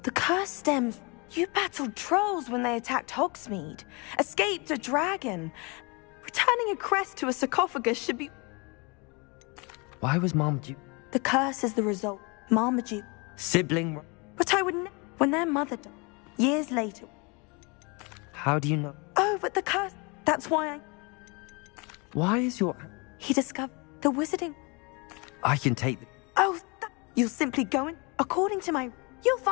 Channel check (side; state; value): right; quieter; 29.5 dB